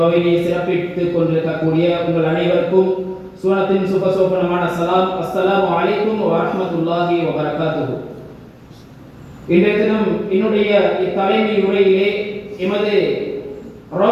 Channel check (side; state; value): both; identical; correlation 1.00